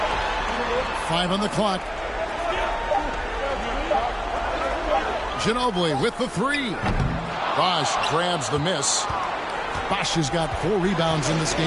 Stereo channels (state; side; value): identical; both; correlation 1.00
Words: 5 on the clock. Ginobili with the 3. Bosh grabs the miss. Bosh has got 4 rebounds in this